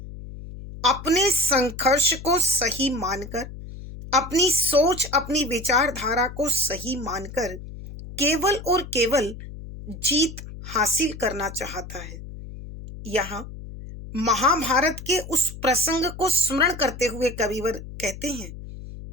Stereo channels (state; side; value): noise; left; hum, 12 dB below the sound